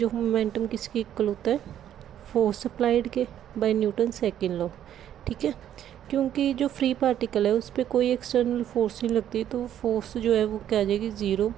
of momentum किसके इक्वल होता है? फोर्स अप्लाइड के बाय न्यूटन सेकेंड लॉ। ठीक है, क्योंकि जो फ्री पार्टिकल है उस पर कोई एक्सटर्नल फोर्स नहीं लगती, तो फोर्स जो है वो क्या आ जाएगी? Zero.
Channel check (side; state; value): left; quieter; 10.7 dB